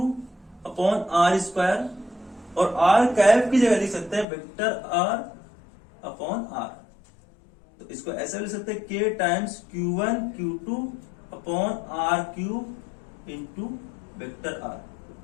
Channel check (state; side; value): drops out; right; at 4.2 s